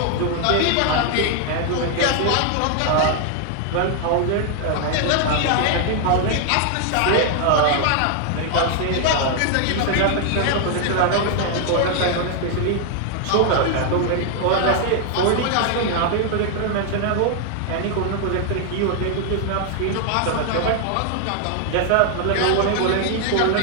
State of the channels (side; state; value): both; different; correlation 0.00